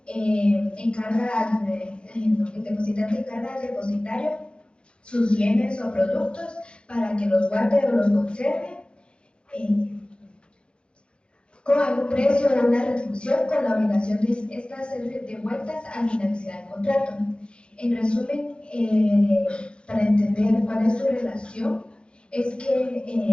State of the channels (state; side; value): late; right; 0.055 ms